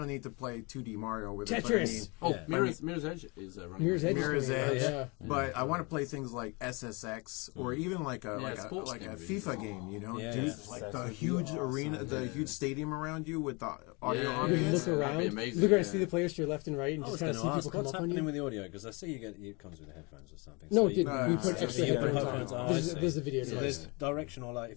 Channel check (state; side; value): quieter; right; 28.7 dB